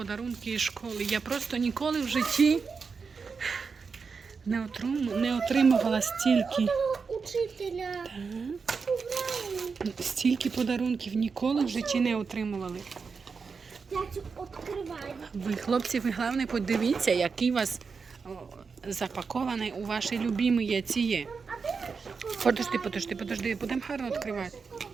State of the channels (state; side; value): quieter; left; 5.2 dB